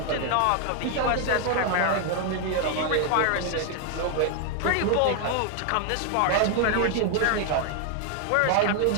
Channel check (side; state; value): both; different; correlation 0.00